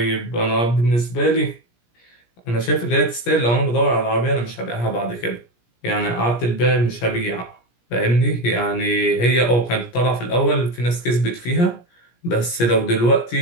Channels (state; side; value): late; right; 17 ms